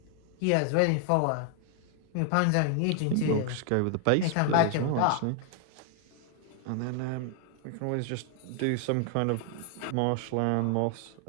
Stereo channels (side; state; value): both; different; correlation 0.00